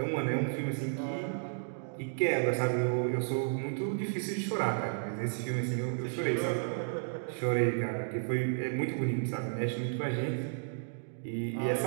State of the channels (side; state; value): left; silent; digital silence